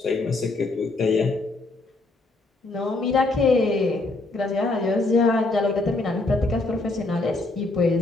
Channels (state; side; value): quieter; right; 3.1 dB